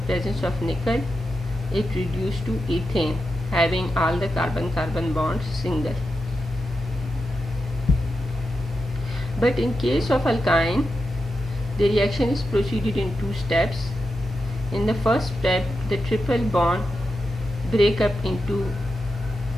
of nickel, it reduces to ethane, having all the carbon-carbon bonds single. But in case of alkyne, the reaction is proceeded in two steps. In the first step, the triple bond break up into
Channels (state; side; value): normal; both; correlation 0.89